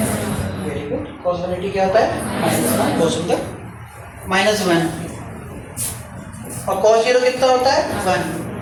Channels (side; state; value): both; identical; correlation 1.00